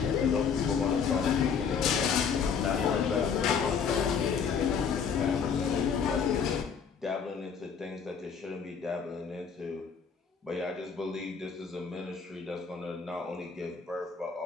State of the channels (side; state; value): right; quieter; 6.4 dB